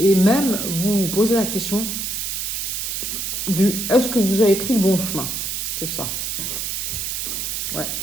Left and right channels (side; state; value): right; noise; hiss, 3 dB below the sound